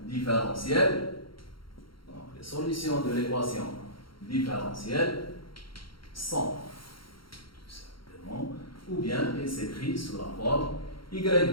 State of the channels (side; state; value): right; late; 0.73 ms